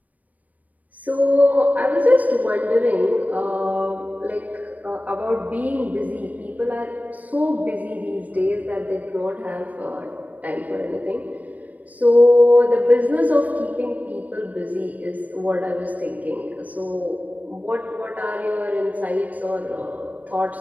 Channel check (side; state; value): left; late; 0.074 ms